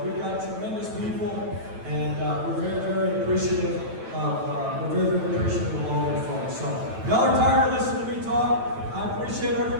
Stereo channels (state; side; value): late; left; 9.1 ms